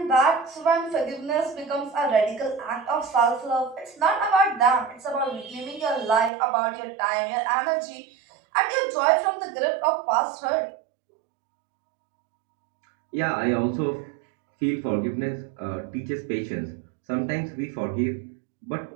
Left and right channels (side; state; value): left; drops out; at 6.3 s